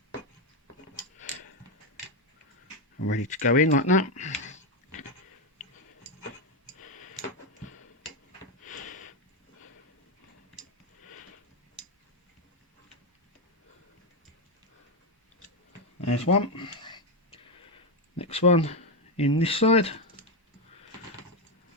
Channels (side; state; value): both; normal; correlation 0.07